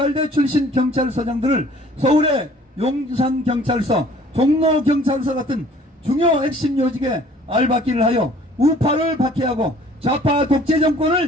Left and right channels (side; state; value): both; normal; correlation 0.53